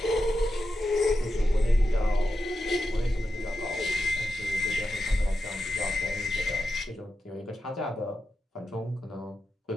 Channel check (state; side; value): normal; both; correlation 0.89